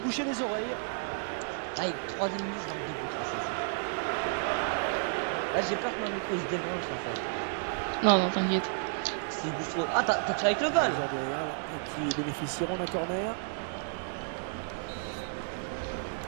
les oreilles. Aïe, 3ème minute, je marque 2 buts là, je joue. Là, j'ai peur que mon micro il se débranche en fait. Non, t'inquiète. S'il bouge trop. Ah, t'as tiré avec le goal. Qui bénéficieront d'un corner.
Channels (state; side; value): silent; left; digital silence